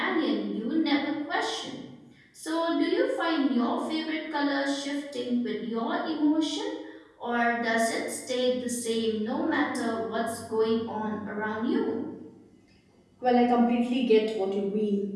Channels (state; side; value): identical; both; correlation 1.00